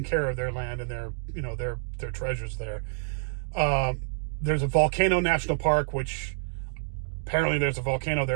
care of their land and their treasures there. There's a volcano national park, which apparently there's a volcano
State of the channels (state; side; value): silent; left; digital silence